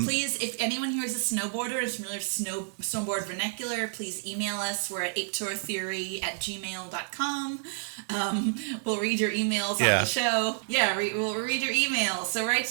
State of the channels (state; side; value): silent; left; digital silence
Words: Please, if anyone here is a snowboarder and is familiar with snowboard vernacular, please email us. We're at Ape-teur Theory at gmail.com. We'll read your emails on the show. Yeah, we'll read your emails. So write